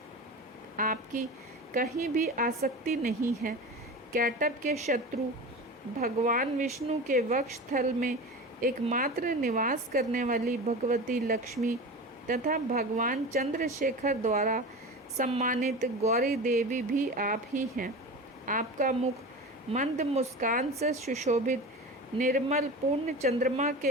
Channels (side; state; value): both; normal; correlation 0.30